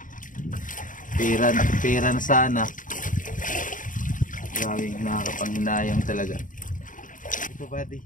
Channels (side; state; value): right; late; 0.38 ms